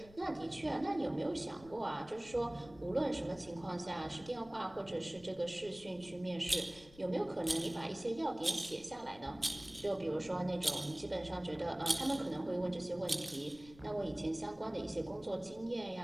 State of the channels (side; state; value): left; noise; rumble, 21 dB below the sound